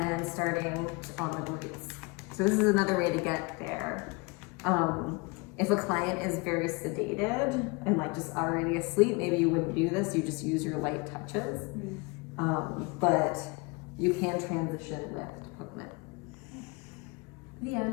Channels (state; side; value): quieter; right; 28.5 dB